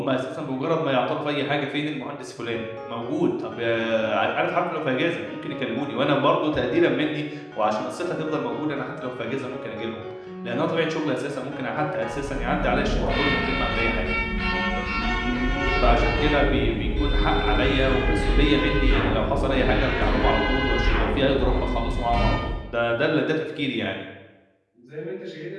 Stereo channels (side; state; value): both; identical; correlation 1.00